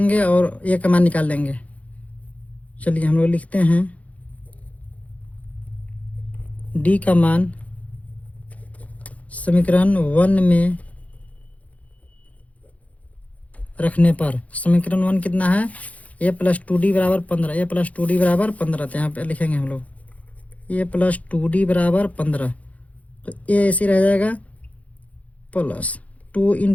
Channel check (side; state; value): right; late; 0.068 ms